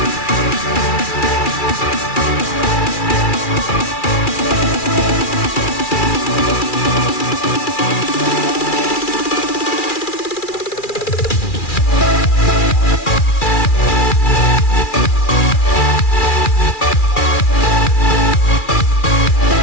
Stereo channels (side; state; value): right; late; 2.4 ms